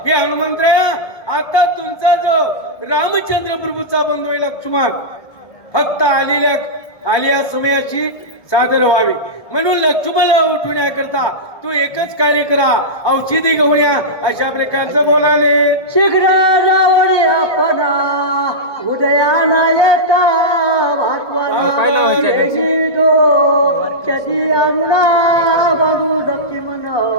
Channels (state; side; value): late; right; 1.2 ms